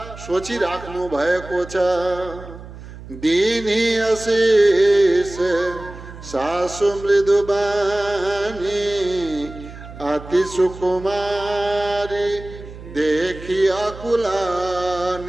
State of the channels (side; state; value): right; noise; hum, 15 dB below the sound